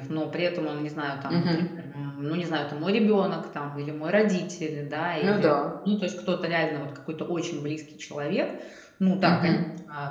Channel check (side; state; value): both; identical; correlation 1.00